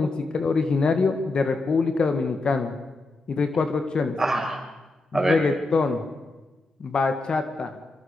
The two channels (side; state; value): right; quieter; 3.0 dB